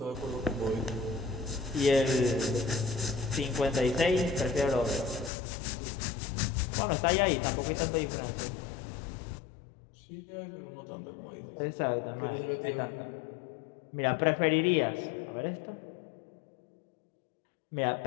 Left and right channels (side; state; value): right; drops out; at 5.3 s